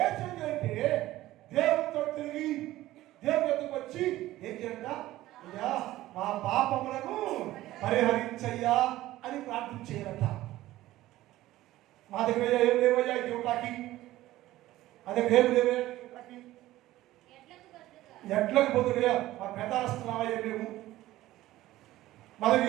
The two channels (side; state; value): left; quieter; 15.8 dB